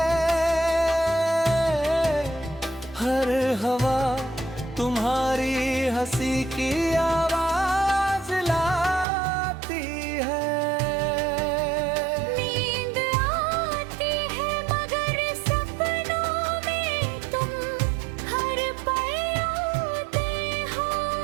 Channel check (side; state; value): left; drops out; at 9.1 s